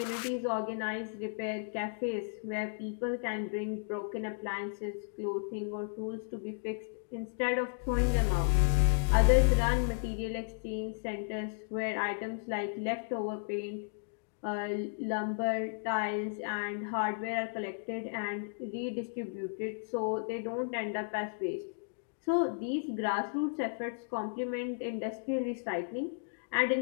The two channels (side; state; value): right; silent; digital silence